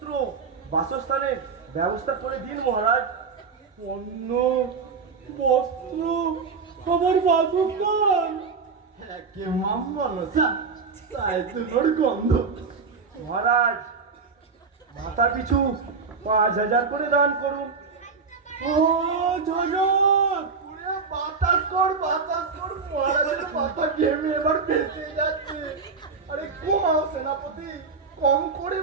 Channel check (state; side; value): quieter; left; 5.0 dB